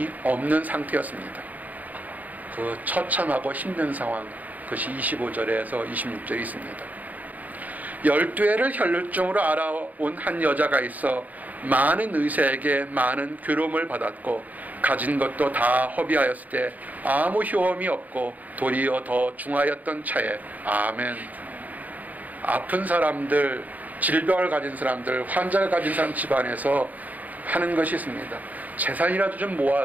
없는 상태였습니다. 그 처참하고 힘든 상황, 그것이 25절에서 26절에 있습니다. 12해를 혈루증으로 알아온 한 여자가 있어 많은 의사에게 많은 괴로움을 받았고 가진 것도 다 허비하였을 때 아무 효험이 없고 도리어 더 중하였던 차에. 아멘. 아픈 사람들, 질병을 가진 사람들, 환자를 가진 사람 집안에서 하는 것이 있습니다. 재산이라도 좀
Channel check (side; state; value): left; late; 0.079 ms